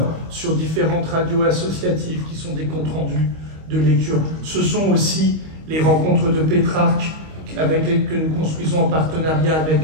sur différentes radios associatives qui sont des comptes rendus de lecture. Ce sont aussi les rencontres de Pétrarque que nous construisons en partenariat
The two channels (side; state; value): left; late; 25 ms